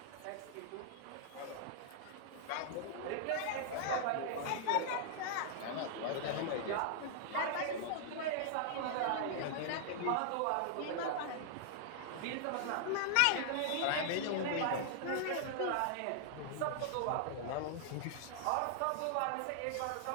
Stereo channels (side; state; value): both; different; correlation -0.01